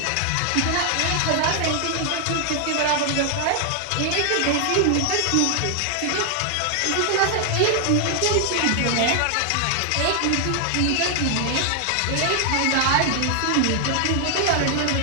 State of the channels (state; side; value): different; both; correlation 0.00